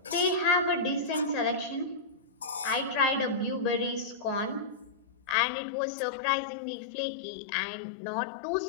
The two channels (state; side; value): drops out; right; at 5.4 s